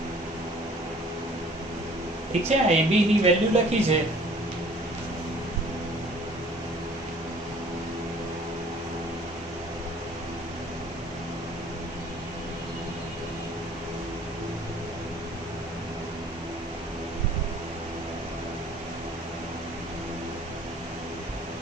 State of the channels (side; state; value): both; normal; correlation 0.53